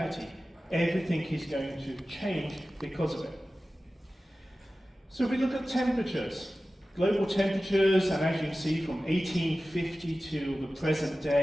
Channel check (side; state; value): both; normal; correlation 0.95